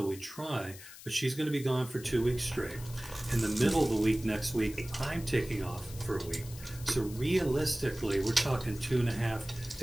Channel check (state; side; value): noise; left; hiss, 16 dB below the sound